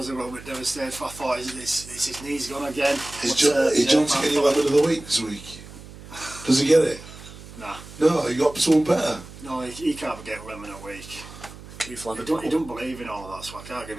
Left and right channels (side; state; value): right; noise; hum, 16 dB below the sound